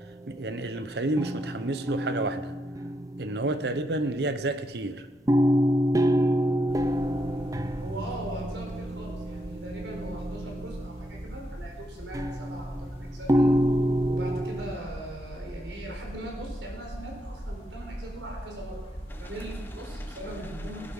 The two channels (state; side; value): normal; both; correlation 0.78